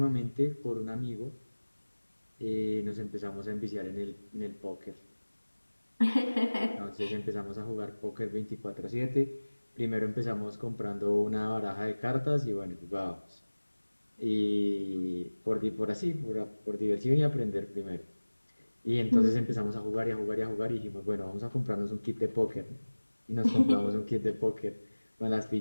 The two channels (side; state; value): both; inverted; correlation -1.00